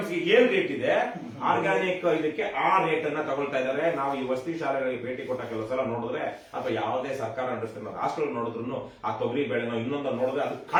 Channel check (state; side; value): identical; both; correlation 1.00